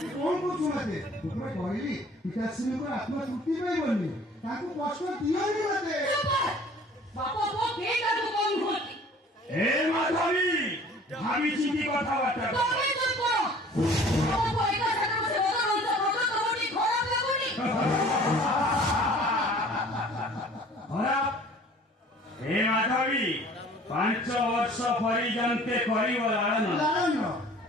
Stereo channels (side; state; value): both; normal; correlation 0.50